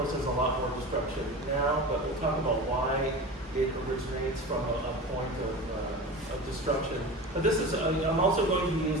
there's a lot more destruction now, but we'll talk about why it originates from a point of destruction. But this is, I'm also going to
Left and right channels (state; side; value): normal; both; correlation 0.31